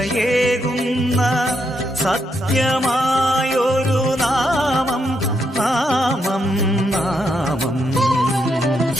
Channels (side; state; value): both; normal; correlation 0.79